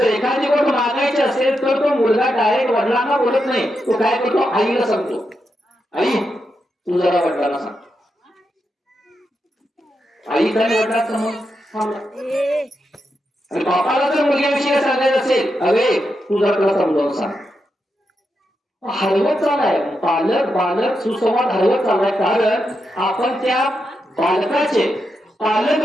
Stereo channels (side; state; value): both; normal; correlation 0.85